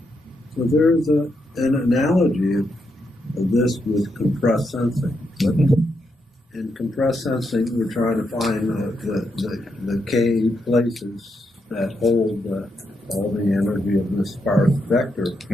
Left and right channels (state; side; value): normal; both; correlation 0.82